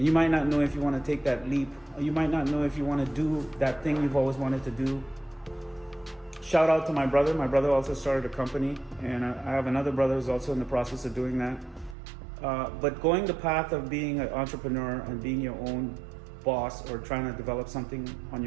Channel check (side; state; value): left; drops out; at 12.0 s